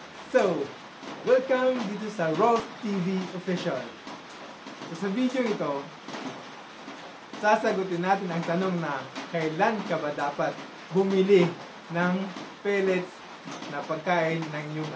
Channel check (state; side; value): identical; both; correlation 1.00